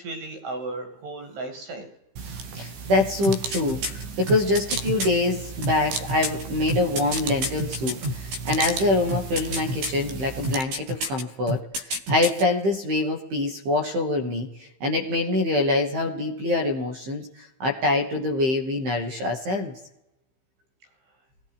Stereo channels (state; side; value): late; left; 15 ms